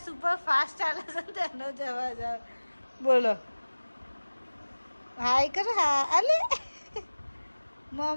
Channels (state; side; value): inverted; both; correlation -1.00